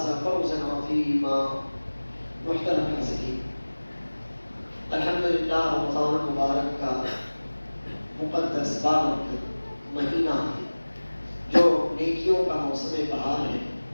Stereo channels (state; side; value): inverted; both; correlation -1.00